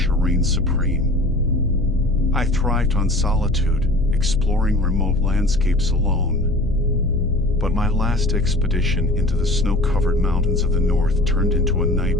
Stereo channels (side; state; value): left; noise; hum, 9 dB below the sound